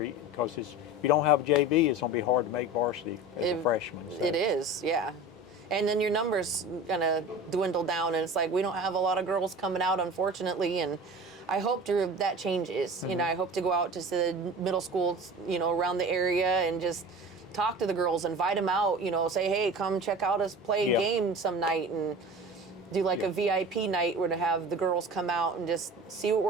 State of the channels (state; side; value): normal; both; correlation 0.36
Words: because if you don't have a JV, it's going to be hard to make varsity as a freshman. So. It is, yeah. And then your numbers gonna dwindle down, and it's like we don't have a lot of girls coming out, unfortunately. And I hope that changes. You know, I hope to go out to the middle schools, you know, around the area and just talk to the girls, invite them out. You know, say, hey, come check out us play a game some night, and do like a VIP night where to have the girls come out and just see what